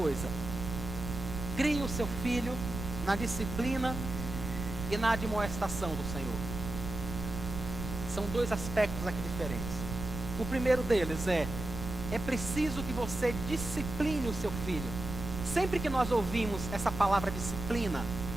Crie o seu filho na disciplina e na admoestação do Senhor. São dois aspectos aqui diferentes. O primeiro deles é preciso que você discipline o seu filho. Sempre que nós ouvimos essa palavra disciplina,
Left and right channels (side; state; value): right; noise; rumble, 7 dB below the sound